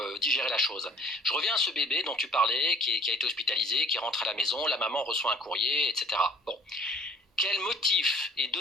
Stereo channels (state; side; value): normal; both; correlation 0.53